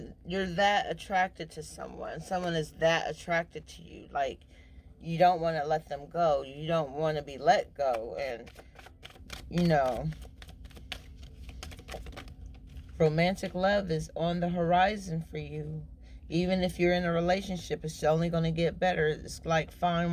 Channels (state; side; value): identical; both; correlation 1.00